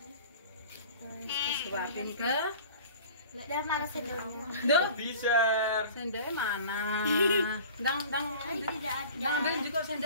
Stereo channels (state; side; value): inverted; both; correlation -0.42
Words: Suapin ke. Udah mana sendoknya? Duh, Bisa. sendoknya mana? Dang Tidak ada. ambil juga